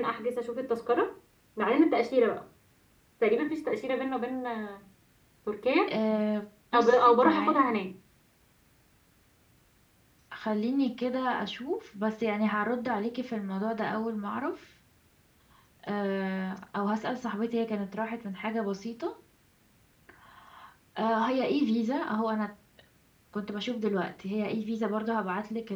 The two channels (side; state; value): both; identical; correlation 1.00